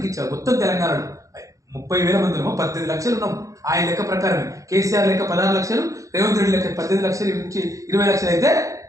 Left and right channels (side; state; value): left; late; 0.16 ms